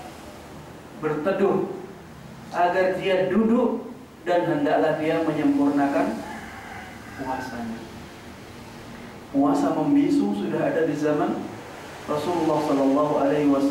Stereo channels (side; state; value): both; identical; correlation 1.00